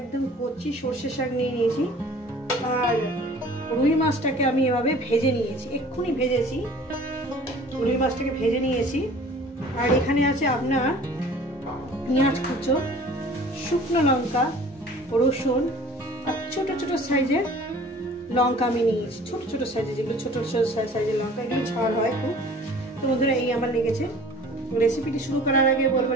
কচি সর্ষে শাক নিয়ে নিয়েছি। আর রুই মাছটাকে আমি এভাবে ভেজে নিয়েছি, এক্ষুনি ভেজেছি। রুই মাছটাকে ভেজে নিয়েছি। আর এখানে আছে আপনার পেঁয়াজ কুচো, শুকনো লঙ্কা, রসুন আর ছোট ছোট সাইজের লঙ্কা আমি নিয়েছি। ছোট ছোট সাইজের, যেগুলো ছোট ছোট সাইজের লঙ্কা, এগুলো ঝাল হয় খুব। তো বন্ধুরা, এই আমার লেগেছে। রেসিপিটি শুরু করার আগে বলবো,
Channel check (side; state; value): both; normal; correlation 0.48